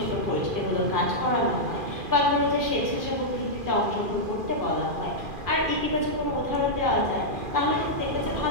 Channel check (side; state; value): left; late; 2.4 ms